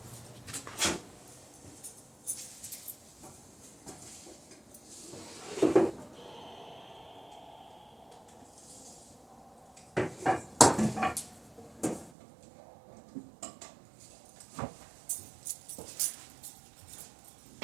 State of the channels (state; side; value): drops out; left; at 12.1 s